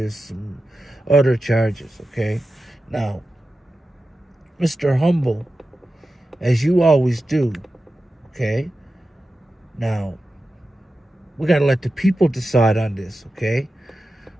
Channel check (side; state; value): both; normal; correlation 0.92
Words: some other charges, okay? Now, Mr. Humble, as you always do, okay? Now, we got to let the people decide on this, okay?